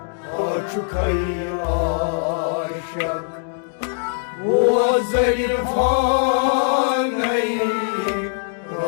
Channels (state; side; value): silent; right; 65 dB below the other